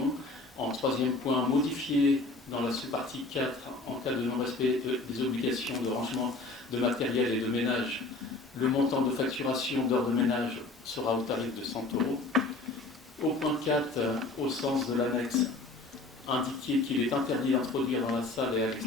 En troisième point, modifié dans la sous-partie 4 en cas de non-respect des obligations de rangement de matériel et de ménage. Le montant de facturation d'heures de ménage sera au tarif de 100 €. Au point 4, au sens de l'annexe, indiquer qu'il est interdit d'introduire dans la salle et à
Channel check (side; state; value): right; quieter; 3.2 dB